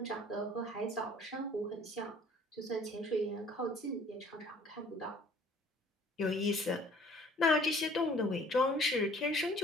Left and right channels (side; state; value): both; normal; correlation 0.54